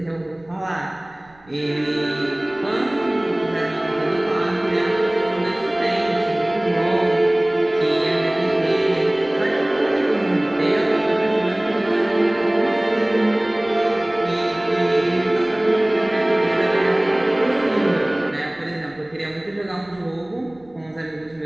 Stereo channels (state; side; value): noise; right; rumble, 30 dB below the sound